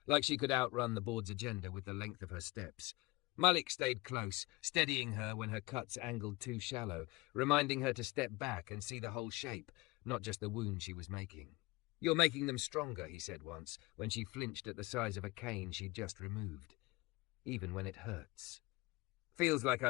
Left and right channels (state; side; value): quieter; right; 22.8 dB